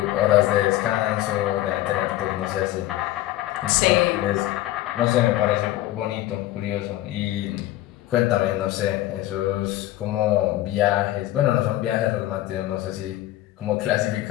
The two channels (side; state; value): right; quieter; 15.2 dB